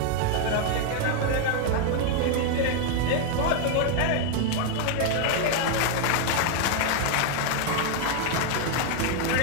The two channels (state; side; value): different; both; correlation 0.00